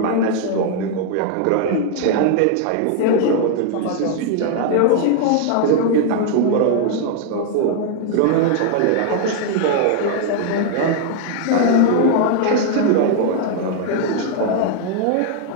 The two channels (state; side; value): different; both; correlation 0.00